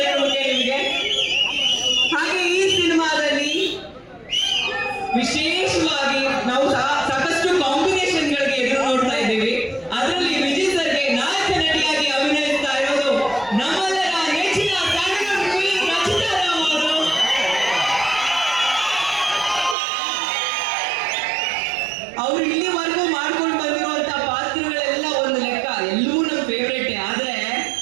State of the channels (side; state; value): left; drops out; at 19.8 s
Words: ನಿಮಗೆ. ಹಾಗೆ ಈ ಸಿನಿಮಾದಲ್ಲಿ ವಿಶೇಷವಾಗಿ ನಾವು ಸಾಕಷ್ಟು ಕಾಂಬಿನೇಷನ್ಗಳಿಗೆ ಎದುರು ನೋಡ್ತಾ ಇದ್ದೀವಿ. ಅದರಲ್ಲಿ ವಿಜಯ್ ಸರ್ಗೆ ನಾಯಕ ನಟಿಯಾಗಿ ಅಭಿನಯಿಸ್ತಾ ಇರೋದು ನಮ್ಮೆಲ್ಲರ ನೆಚ್ಚಿನ ಸ್ಯಾಂಡಲ್ವುಡ್ ಕ್ವೀನ್ ರಚಿತಾ ರಾಮ್ ಅವರು. ಅವರು ಇಲ್ಲಿವರೆಗೂ ಮಾಡ್ಕೊಂಡು ಬಂದಿರುವಂತಹ ಪಾತ್ರಗಳೆಲ್ಲ ಒಂದು ಲೆಕ್ಕ, ಎಲ್ಲವೂ ನಮ್ಮ ಫೇವ್ರೇಟೇ. ಆದ್ರೆ